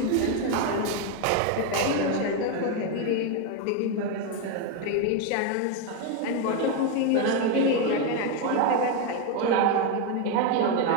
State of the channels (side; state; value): both; different; correlation 0.02